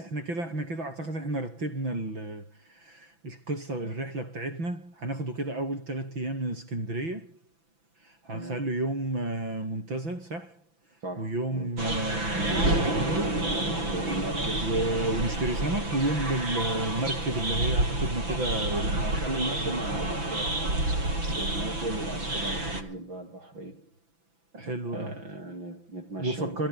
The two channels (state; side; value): late; left; 6.0 ms